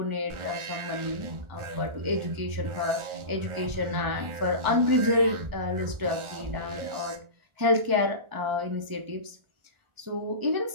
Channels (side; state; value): left; late; 1.4 ms